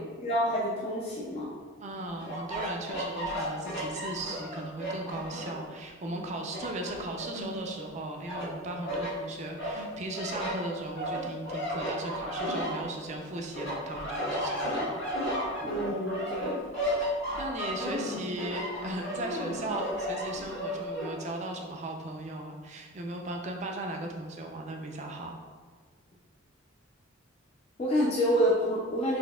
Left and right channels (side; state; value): both; normal; correlation 0.28